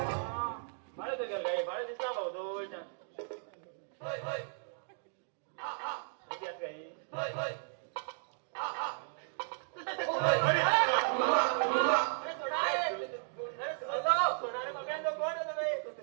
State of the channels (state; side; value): silent; left; digital silence